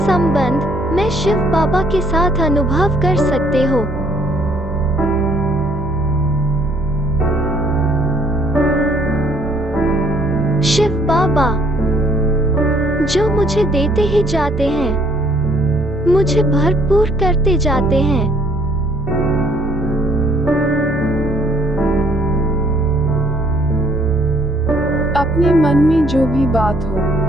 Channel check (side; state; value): both; normal; correlation 0.63